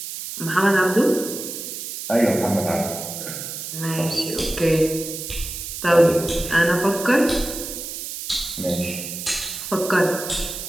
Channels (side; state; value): right; noise; hiss, 8 dB below the sound